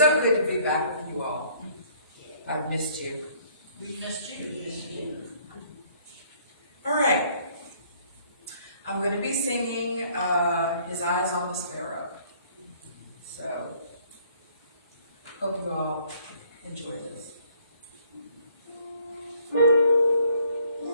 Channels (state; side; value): inverted; both; correlation -0.61